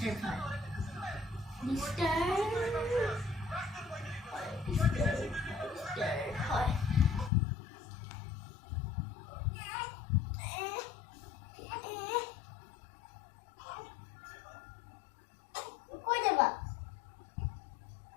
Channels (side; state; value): right; drops out; at 7.3 s